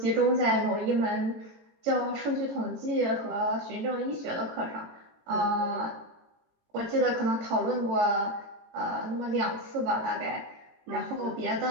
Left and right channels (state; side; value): late; left; 18 ms